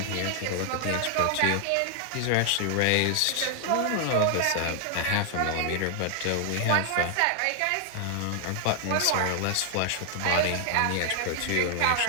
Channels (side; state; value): both; different; correlation 0.00